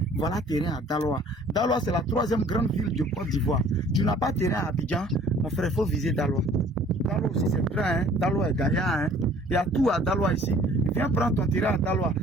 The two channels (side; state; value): both; normal; correlation 0.53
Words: Voilà terrain à Daloa. Daloa, c'est la 3e grande ville de Côte d'Ivoire. Tu n'as pas terrain à Abidjan, mon frère, il faut viser Daloa. Daloa aussi c'est grand, hein. Daloa est gagnant, hein. Il y a tout à Daloa ici. Viens prendre ton terrain à Daloa.